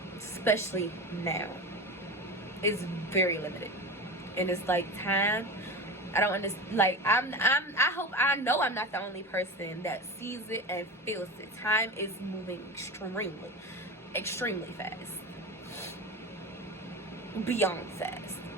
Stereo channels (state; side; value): normal; both; correlation 0.27